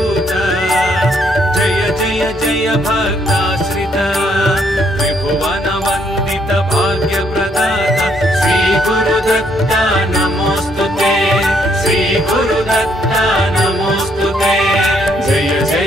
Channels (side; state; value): both; normal; correlation 0.71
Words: जय जय जय भक्ताश्रित त्रिभुवन वंदित भाग्य प्रदाता श्री गुरुदत्ता नमोस्तुते। श्री गुरुदत्ता नमोस्तुते। जय